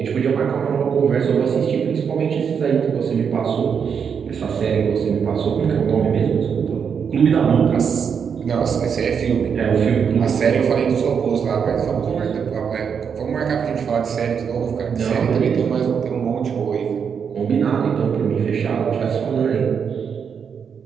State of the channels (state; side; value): quieter; left; 6.9 dB